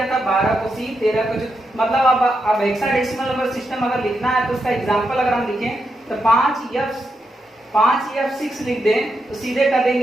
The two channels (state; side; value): normal; both; correlation 0.84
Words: था, 12 को सी, 13 को मतलब अब हेक्साडेसिमल नंबर सिस्टम अगर लिखना है तो उसका एग्जांपल अगर हम लिखें तो 5F6 लिख दें तो सीधे कर